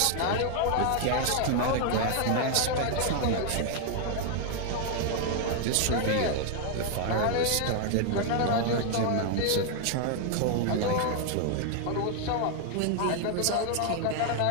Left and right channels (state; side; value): different; both; correlation 0.00